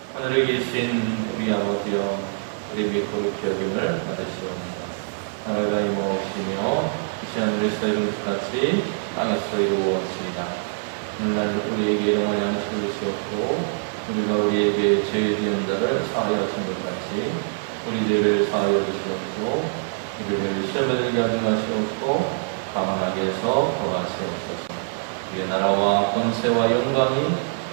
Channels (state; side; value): silent; left; digital silence